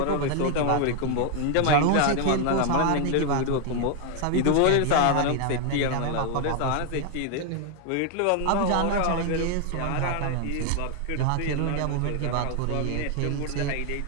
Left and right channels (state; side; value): different; both; correlation 0.00